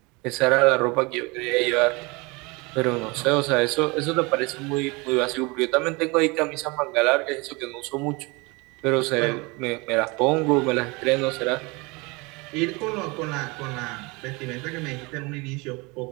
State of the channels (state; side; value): quieter; left; 26.5 dB